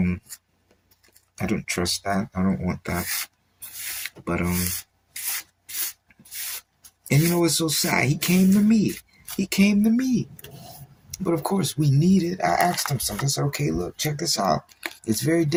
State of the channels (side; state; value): both; identical; correlation 1.00